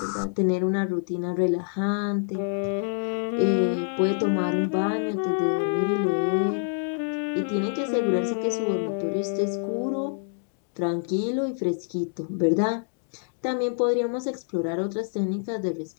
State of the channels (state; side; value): silent; right; 61 dB below the other